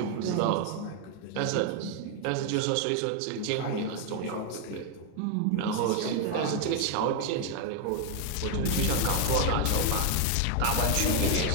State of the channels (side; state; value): both; different; correlation 0.01